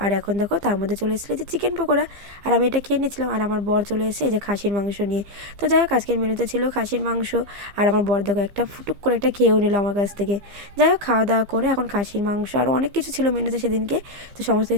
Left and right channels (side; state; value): left; late; 15 ms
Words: আর এখন দেখো তার মধ্যে চলে এসেছিলো যে চিকেন পকোড়া, আর আমি এটা খেয়ে নিচ্ছিলাম। আর আমার বর চলে এসে এই যে খাসির মাংস নিয়ে। তো যাই হোক আজকের মেনুতে ছিল খাসির মাংস, আর আমার বর দেখো একটা ফুটুক করে একটা খেয়েও নিল আমার কাছ থেকে। যাই হোক খাওয়া দাওয়া করে এখন খাসির মাংস আর অনেক কিছু ছিল মেনুতে সেদিনকে, তো সমস্ত